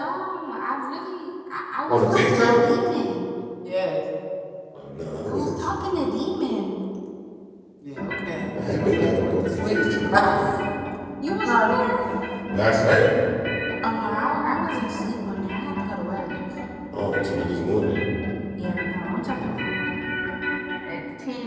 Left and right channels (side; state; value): both; identical; correlation 1.00